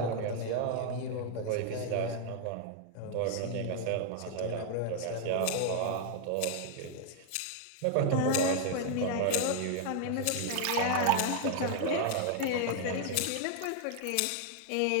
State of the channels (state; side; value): different; both; correlation 0.00